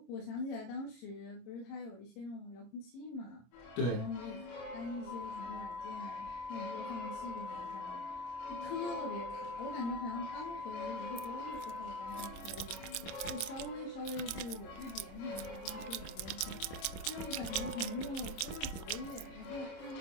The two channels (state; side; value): late; right; 25 ms